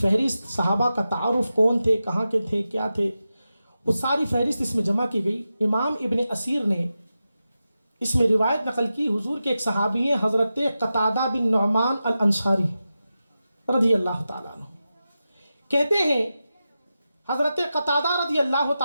صحابہ کا تعارف، کون تھے، کہاں کے تھے، کیا تھے، وہ ساری فہرست اس میں جمع کی گئی۔ امام ابن اسیر نے اس میں روایت نقل کی، حضور کے ایک صحابی ہیں حضرت قتادہ بن نعمان الانصاری رضی اللہ تعالیٰ عنہ، کہتے ہیں حضرت قتادہ رضی اللہ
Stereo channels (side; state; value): both; inverted; correlation -0.92